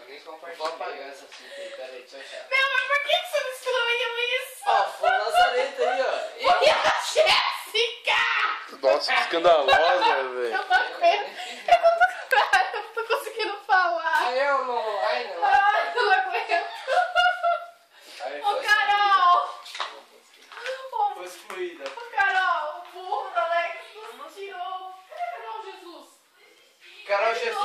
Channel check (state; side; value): identical; both; correlation 1.00